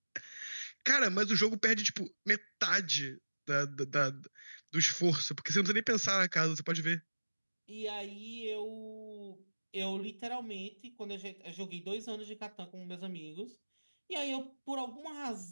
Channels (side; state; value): both; inverted; correlation -1.00